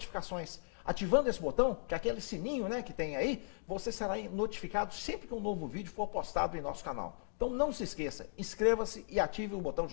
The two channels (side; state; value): right; silent; digital silence